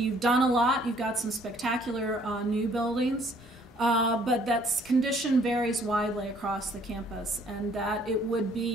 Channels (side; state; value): both; normal; correlation 0.61